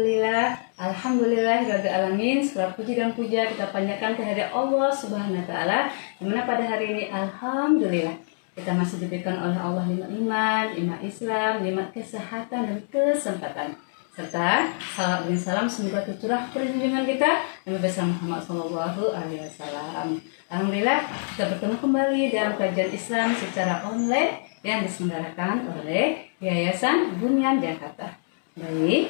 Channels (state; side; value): silent; right; digital silence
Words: alamin. Segala puji dan puja kita panjatkan kehadirat Allah Subhanahu wa taala. Dimana pada hari ini alhamdulillah kita masih diberikan oleh Allah nikmat iman, nikmat Islam, nikmat kesehatan dan kesempatan. Serta salam dan salam semoga tercurah perlindungan kita Nabi besar Muhammad SAW. Alhamdulillah kita bertemu kembali dalam kajian Islam secara online yang diselenggarakan oleh Yayasan Bunyan Jakarta.